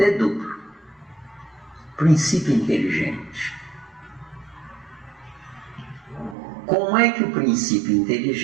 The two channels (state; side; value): drops out; left; at 6.4 s